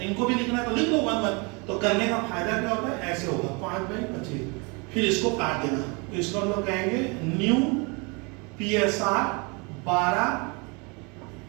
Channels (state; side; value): quieter; left; 30.8 dB